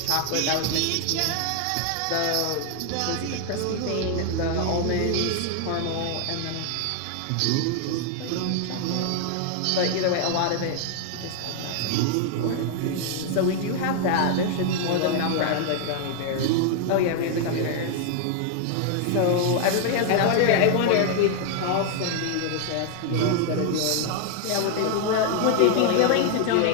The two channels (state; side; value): different; both; correlation 0.00